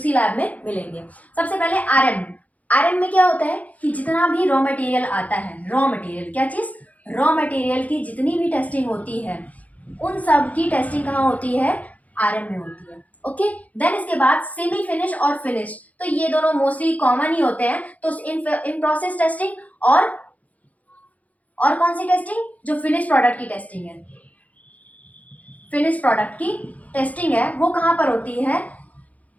लैब में मिलेंगे। सबसे पहले आरएम। आरएम में क्या होता है कि जितना भी रॉ मटेरियल आता है, रॉ मटेरियल क्या चीज, रॉ मटेरियल की जितनी भी टेस्टिंग होती है, उन सब की टेस्टिंग कहाँ होती है, आरएम में होती है। ओके, देन इसके बाद सेमी फिनिश और फिनिश, तो ये दोनों मोस्टली कॉमन ही होते हैं। तो इन प्रोसेस टेस्टिंग और कौन सी टेस्टिंग, जो फिनिश प्रोडक्ट की टेस्टिंग है, फिनिश प्रोडक्ट की टेस्टिंग है, वो कहाँ पर होती है,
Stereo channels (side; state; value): right; late; 0.072 ms